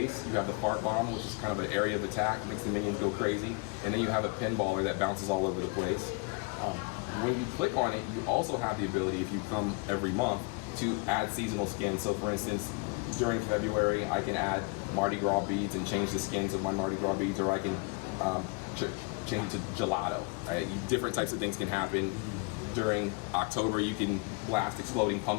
You have the fart bomb, which is kind of an area of attack, makes the minions go crazy. And then you have a pinballer that bounces all over the place. When you click on it, you also have the ability, if you come every month, to add seasonal skins. So for instance, during February, I can add Mardi Gras beads and change the skins of my Mardi Gras beads, or I can change it to gelato. Right? Different types of things can happen. During October, you can blast exploding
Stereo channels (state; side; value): quieter; right; 31.4 dB